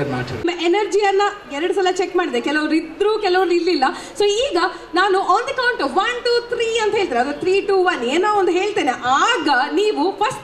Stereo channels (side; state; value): both; identical; correlation 1.00